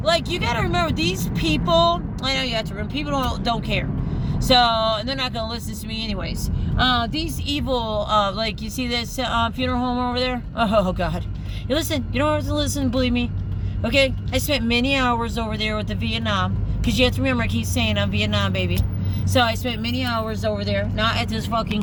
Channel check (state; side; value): identical; both; correlation 1.00